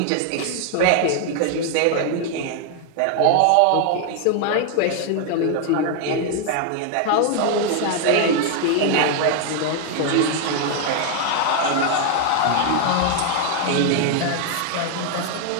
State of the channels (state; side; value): different; both; correlation 0.00